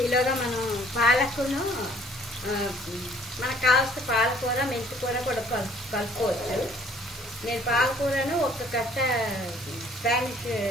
ఈలోగా మనం పాలకును, మనకు కావాల్సిన పాలకూర, మెంతికూర కూడా కలుపుకోవచ్చు. నేను పాలకూరను ఒక కట్ట స్పానిష్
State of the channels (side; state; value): both; normal; correlation 0.58